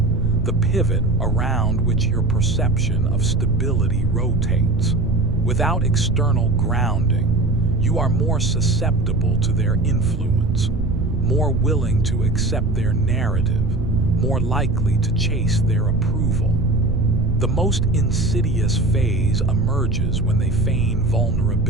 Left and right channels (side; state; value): right; noise; rumble, 3 dB below the sound